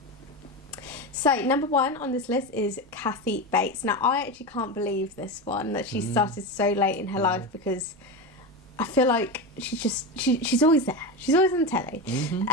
So, number one on this list is Kathy Bates. Now, I actually can't believe this one, that she started so late in her life, because I feel like she's always there. She's always on telly.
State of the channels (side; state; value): right; noise; rumble, 27 dB below the sound